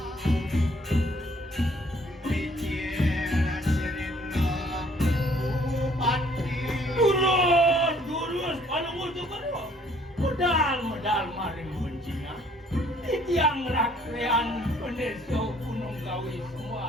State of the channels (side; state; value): both; normal; correlation 0.61